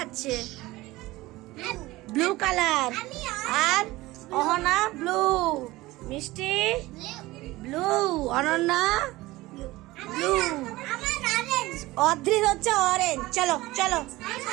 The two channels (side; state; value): left; quieter; 19.0 dB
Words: Blue colour. আর Ahana blue, Mishti blue, Ananya blue, Adrit হচ্ছে অরেঞ্জ। চলো চলো।